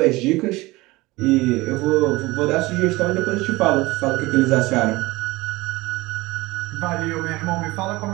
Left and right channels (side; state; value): left; quieter; 21.0 dB